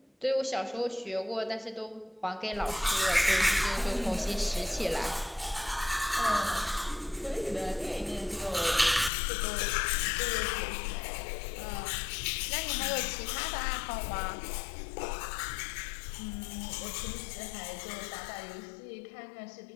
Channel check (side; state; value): right; drops out; at 9.1 s